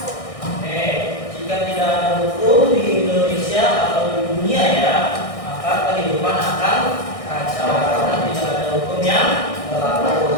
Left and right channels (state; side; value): late; right; 1.6 ms